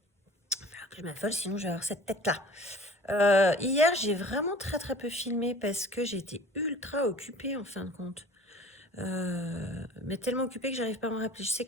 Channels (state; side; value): normal; both; correlation 0.45